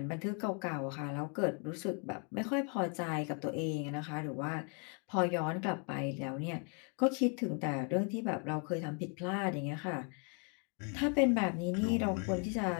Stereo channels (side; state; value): right; quieter; 37.9 dB